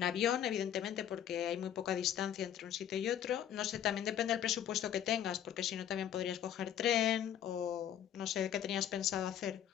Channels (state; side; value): quieter; right; 10.2 dB